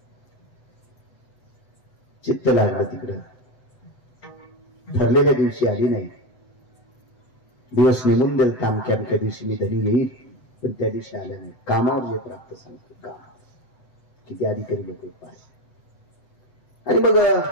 चित्त लागलं तिकडं. ठरलेल्या दिवशी आली नाही. दिवस नेमून देईल, अमक्या अमक्या दिवशी मी धनी येईल, पण त्या दिवशी आल्या नाही. कामावर जे प्राप्त सांगतो, काम किती अधिकारी लोक पाहिजे. आणि मग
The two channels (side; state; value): right; late; 7.8 ms